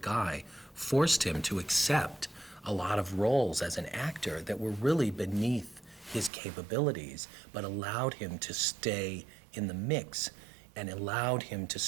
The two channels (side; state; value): left; drops out; at 6.3 s